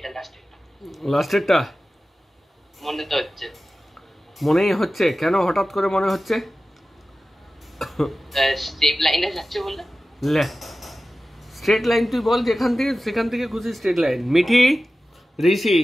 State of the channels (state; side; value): normal; both; correlation 0.95